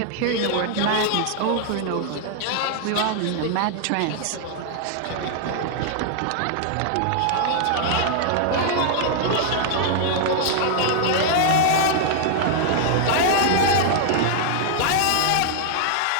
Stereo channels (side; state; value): both; different; correlation 0.00